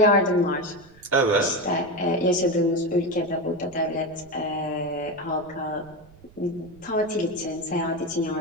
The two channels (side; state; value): right; noise; rumble, 25 dB below the sound